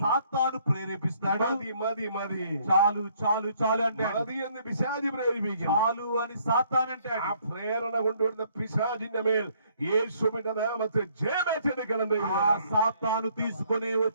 సాతాను ప్రేరేపిస్తాడు. മതി മതി മതി, చాలు చాలు చాలు అంటే മതി എന്ന് പിശാചി പ്രേരിപ്പിക്കും. చాలు అని సాతాను అంటే ആ പ്രേരണ കൊണ്ടുവരുന്ന പിശാചിന്റെ മേൽ യേശുവിന്റെ നാമത്തിൽ ജയമേറ്റെടുക്കണം. ఆ సాతాను తీసుకొని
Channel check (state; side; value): inverted; both; correlation -0.65